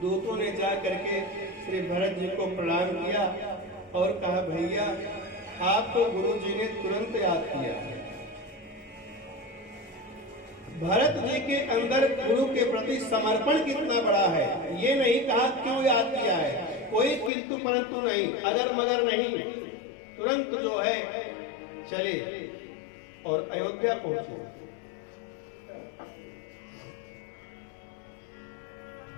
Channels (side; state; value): right; drops out; at 17.3 s